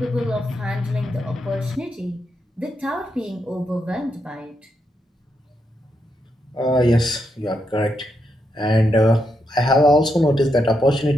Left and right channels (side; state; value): both; normal; correlation 0.82